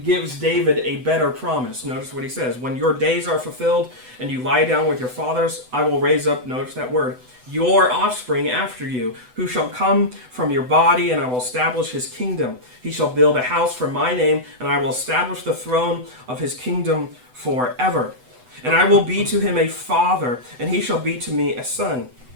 David a better promise. Notice what he says. When your days are fulfilled and you lie down with your fathers, I will raise up, notice that word, your offspring after you, who shall come from your body, and I will establish his kingdom. He shall build a house for my name, and I will establish the throne of his kingdom forever. And I will be to him a father, and he shall be to me a son.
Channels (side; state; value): left; late; 8.0 ms